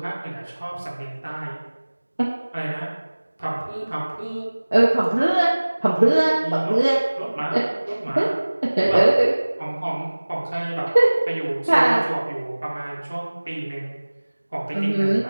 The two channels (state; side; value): inverted; both; correlation -1.00